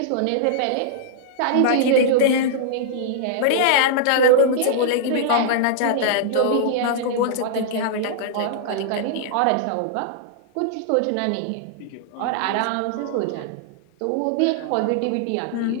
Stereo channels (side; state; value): both; different; correlation -0.01